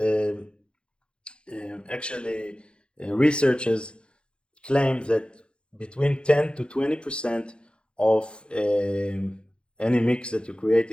actually, researchers claim that between 10 to 20% of any mix that you're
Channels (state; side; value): late; right; 0.055 ms